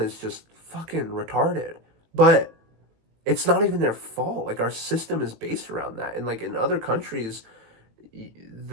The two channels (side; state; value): left; late; 18 ms